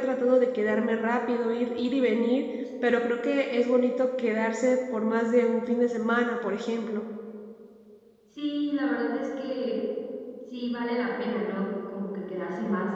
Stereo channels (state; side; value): identical; both; correlation 1.00